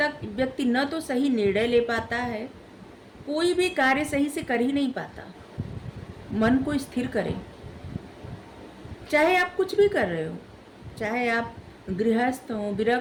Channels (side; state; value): both; identical; correlation 1.00